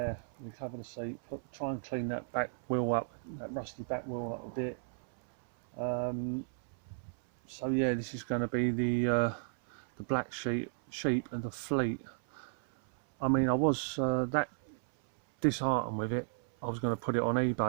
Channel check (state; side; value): silent; left; 55 dB below the other